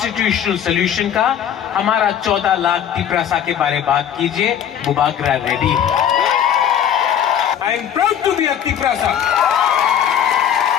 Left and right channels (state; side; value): quieter; right; 9.4 dB